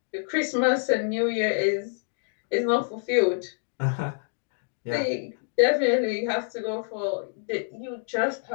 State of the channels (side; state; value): right; silent; digital silence